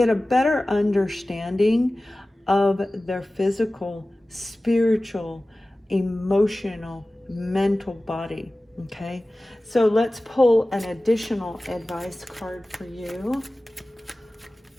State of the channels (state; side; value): normal; both; correlation 0.97